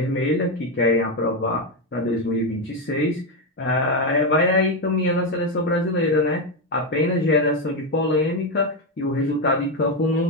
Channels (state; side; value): normal; both; correlation 0.08